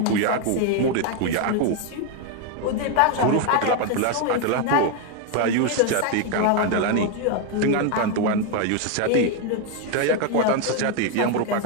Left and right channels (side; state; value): both; different; correlation 0.01